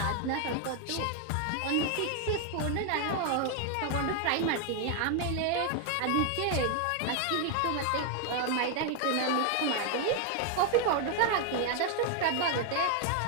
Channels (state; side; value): different; both; correlation 0.00